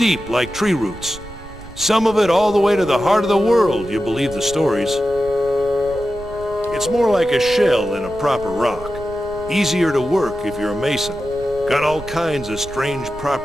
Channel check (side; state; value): right; noise; rumble, 16 dB below the sound